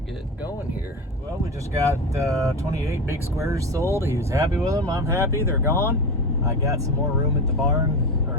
going here. Well, we just got 28 big squares sold. He was happy with them. I'm happy. They're gone. I got some more room at the barn, or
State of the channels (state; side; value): normal; both; correlation 0.23